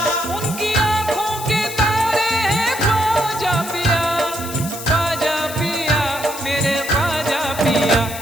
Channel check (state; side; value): noise; left; hiss, 11 dB below the sound